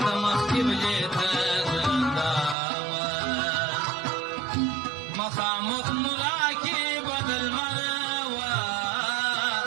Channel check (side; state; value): left; drops out; at 2.6 s